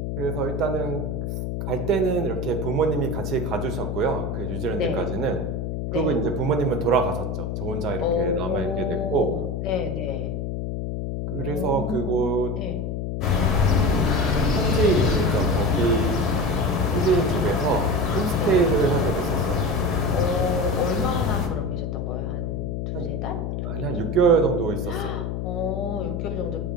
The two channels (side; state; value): left; noise; hum, 3 dB below the sound